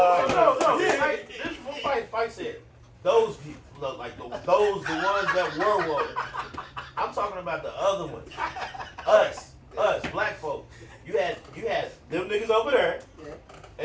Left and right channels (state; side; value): identical; both; correlation 1.00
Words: that. No. This is what Fight said. Those people look like the ones that were woke. I'm talking about the other ones. Us, black folks. You had them niggas over there,